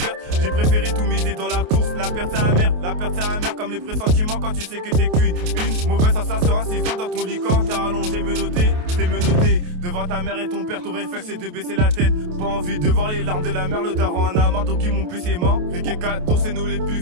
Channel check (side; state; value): left; late; 28 ms